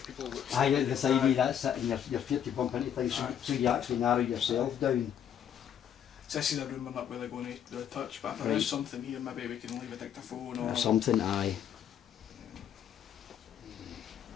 Aye, at the side of that's it, and your feet to bump into things, Aye. so you actually narrow yourself down. So this is a room we're not really going to do a touch, but if there Right. is something here, maybe we can leave a dictaphone Or or something. Aye.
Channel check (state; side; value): quieter; right; 9.3 dB